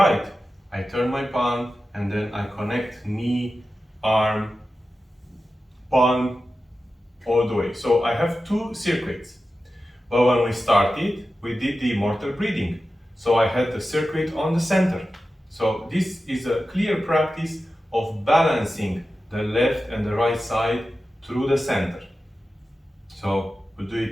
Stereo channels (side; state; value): both; normal; correlation 0.93